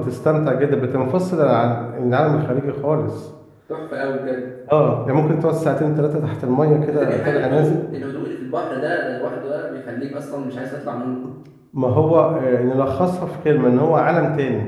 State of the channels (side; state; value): both; identical; correlation 1.00